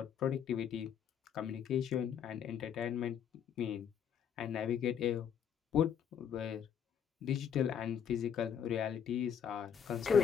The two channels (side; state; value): right; quieter; 8.2 dB